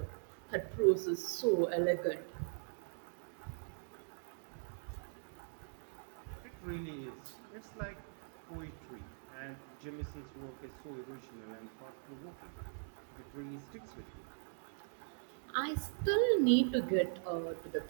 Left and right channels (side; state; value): left; silent; digital silence